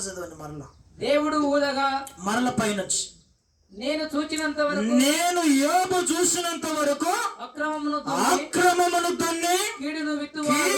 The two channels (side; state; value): both; identical; correlation 1.00